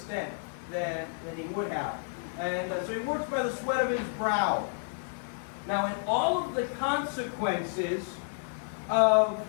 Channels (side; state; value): right; silent; digital silence